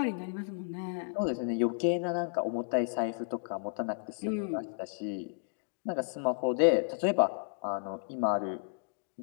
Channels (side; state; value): right; silent; digital silence